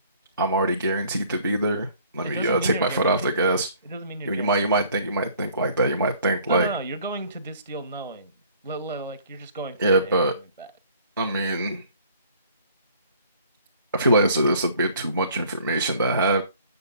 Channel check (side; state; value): both; inverted; correlation -0.55